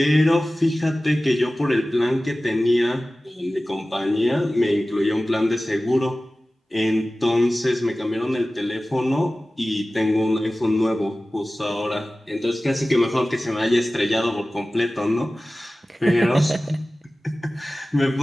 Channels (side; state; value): both; normal; correlation 0.97